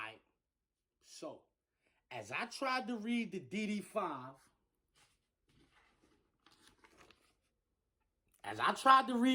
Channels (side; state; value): both; identical; correlation 1.00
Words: So, as I tried to read the DD5,